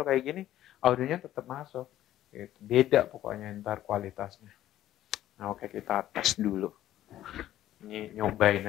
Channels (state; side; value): quieter; right; 13.2 dB